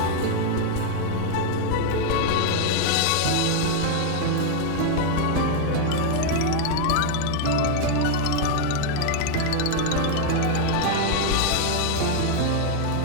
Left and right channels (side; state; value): both; different; correlation 0.00